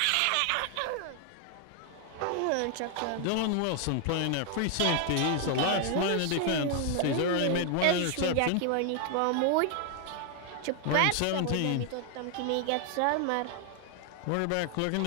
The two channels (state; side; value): different; both; correlation 0.00